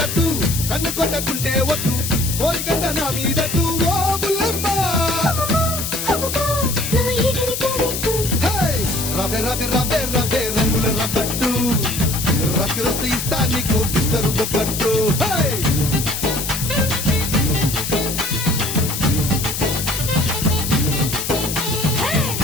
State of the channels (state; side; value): noise; left; hiss, 4 dB below the sound